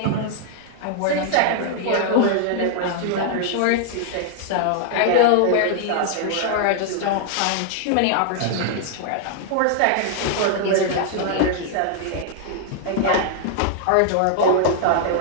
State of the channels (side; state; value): both; different; correlation -0.01